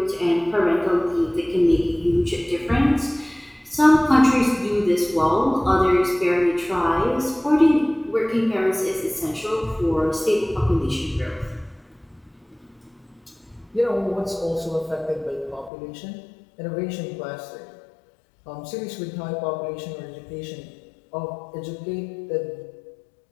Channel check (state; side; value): drops out; right; at 15.7 s